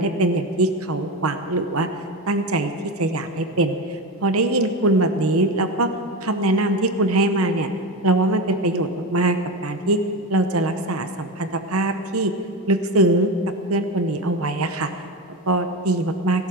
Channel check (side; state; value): both; normal; correlation 0.21